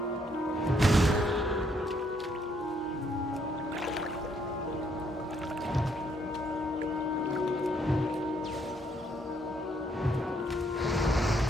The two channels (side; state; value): both; normal; correlation 0.70